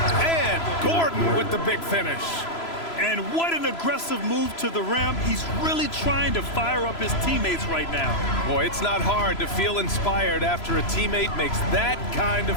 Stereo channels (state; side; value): late; right; 3.0 ms